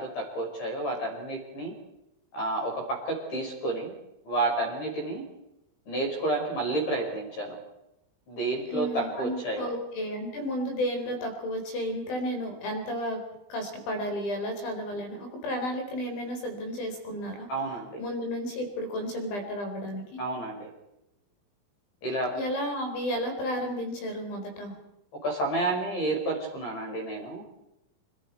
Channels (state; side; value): late; right; 20 ms